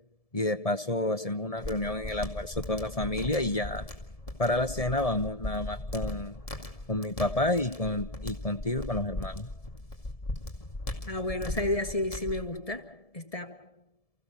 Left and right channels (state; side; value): late; right; 1.7 ms